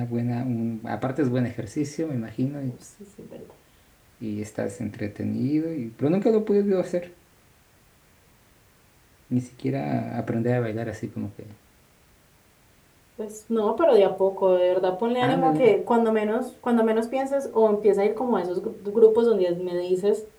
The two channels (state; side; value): identical; both; correlation 1.00